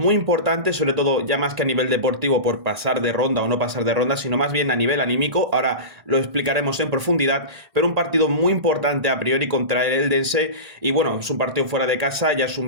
importante, sobre todo ya más que a nivel deportivo por pasar de ronda o no pasar de ronda, sino más bien a nivel anímico, ahora lo explicaremos en profundidad, pero un partido muy importante a priori contra el Eldense y bueno, es un partido fuera de casa, ya es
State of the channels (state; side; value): late; left; 1.5 ms